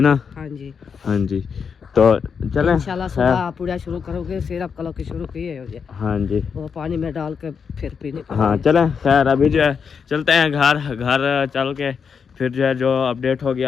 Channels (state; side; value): quieter; right; 6.3 dB